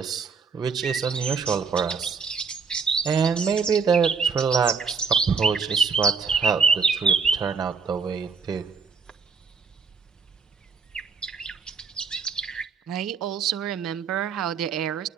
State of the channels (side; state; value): left; quieter; 5.5 dB